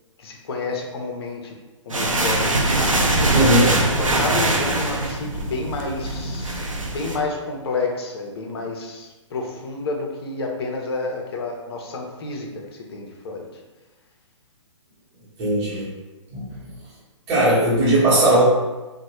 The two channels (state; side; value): normal; both; correlation -0.19